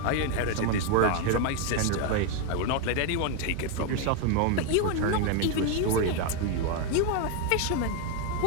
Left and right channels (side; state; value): both; different; correlation 0.01